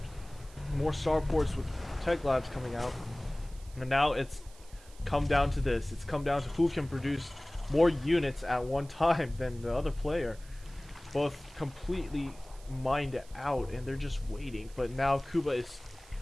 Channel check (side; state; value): right; noise; hiss, 24 dB below the sound